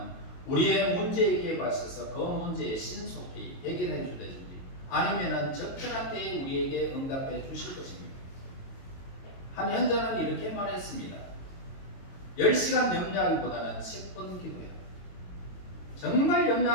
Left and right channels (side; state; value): right; late; 22 ms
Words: 우리의 문제에 발서서 그 문제에 신속히 해결해 주든지 아니면은 적절한 때에 우리에게 응답해 주실 것입니다. 한 현자는 이렇게 말했습니다. 10시간 염려하기보다는 10분 기도해요. 정말